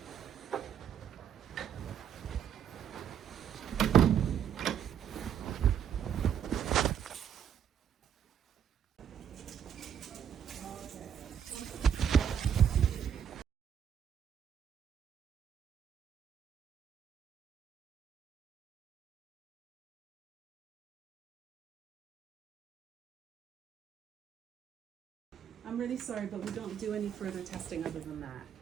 I'm really sorry, but we don't do any further testing other than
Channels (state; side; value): quieter; left; 8.7 dB